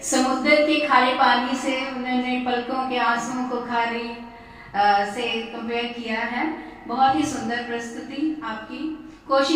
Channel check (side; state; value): both; identical; correlation 1.00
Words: समुद्र के खारे पानी से उन्होंने पलकों के आंसुओं को खारे से कंपेयर किया है। बहुत ही सुंदर प्रस्तुति आपकी।